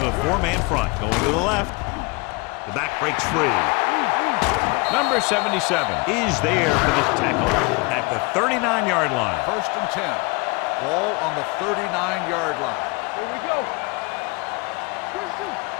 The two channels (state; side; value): quieter; right; 27.8 dB